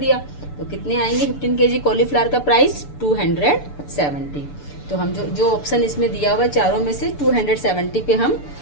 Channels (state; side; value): late; right; 6.9 ms